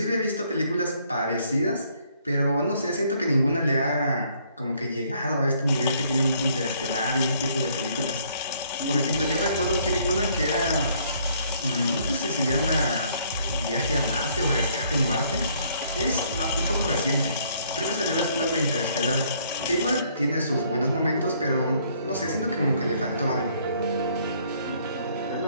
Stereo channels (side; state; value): both; inverted; correlation -0.65